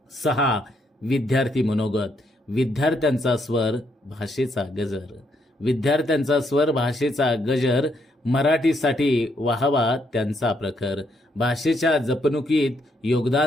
6. विद्यार्थी मनोगत. विद्यार्थ्यांचा स्वर, भाषेचा गजर. विद्यार्थ्यांचा स्वर, भाषेचा गजर. मराठीसाठी वाहवा त्यांचा प्रखर. भाषेच्या जपणुकीत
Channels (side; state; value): both; normal; correlation 0.75